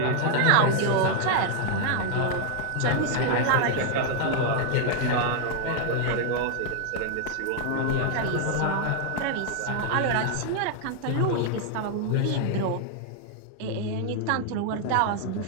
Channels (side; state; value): both; different; correlation 0.00